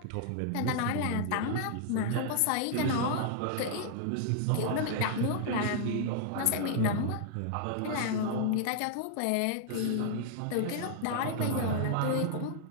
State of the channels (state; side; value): different; both; correlation -0.01